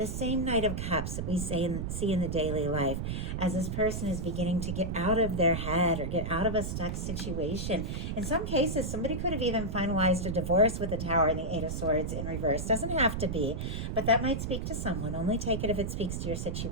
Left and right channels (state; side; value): noise; right; rumble, 3 dB below the sound